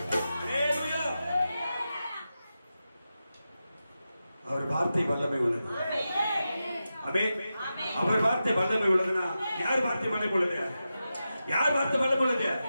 அவர் வார்த்தை வல்லமை உள்ளது. ஆமென். அவர் வார்த்தை வல்லமை உள்ளதுன்னா யார் வார்த்தை வல்லமை உள்ளது? யார் வார்த்தை வல்லமை உள்ளது?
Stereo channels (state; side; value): inverted; both; correlation -0.91